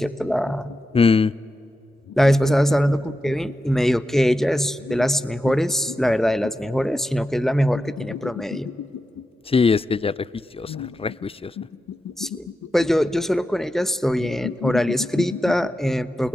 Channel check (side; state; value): both; normal; correlation 0.89